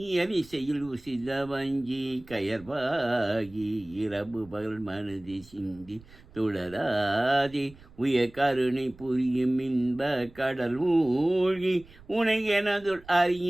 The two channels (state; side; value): noise; right; rumble, 23 dB below the sound